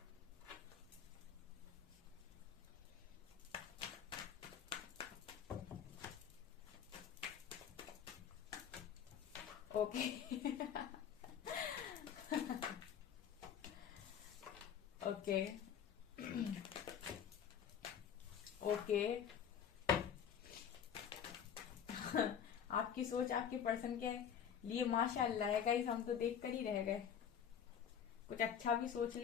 Okay okay okay आपकी सोच आपके पर्सन के लिए माशाअल्लाह है गाइस, हम तो देख कर ही रह गए। कुछ अच्छा भी सोच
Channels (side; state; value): right; quieter; 8.3 dB